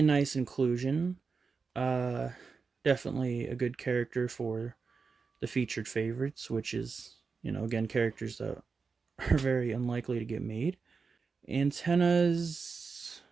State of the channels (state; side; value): quieter; left; 4.9 dB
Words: nice inclusion. Definitely a good character for the featured favorites, which is, again, characters that are very unlikely to get made. Antennas,